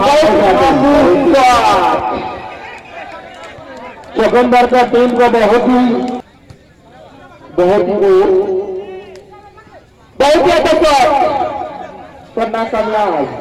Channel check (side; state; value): both; identical; correlation 1.00